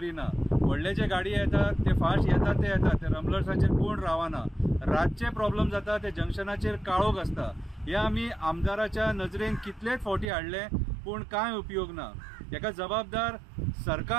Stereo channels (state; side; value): drops out; left; at 10.2 s